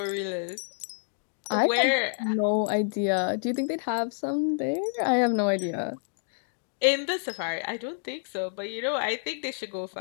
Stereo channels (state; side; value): silent; right; digital silence